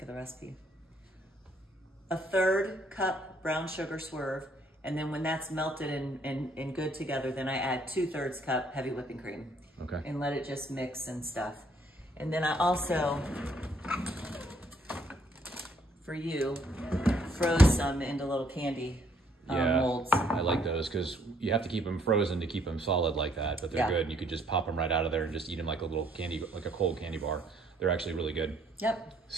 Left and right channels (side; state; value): both; normal; correlation 0.66